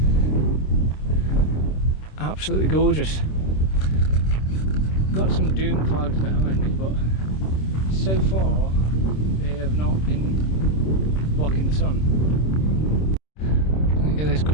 absolutely gorgeous. Got some doom clouds behind me, but so far they have not been blocking the sun. Look at this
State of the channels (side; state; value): right; late; 26 ms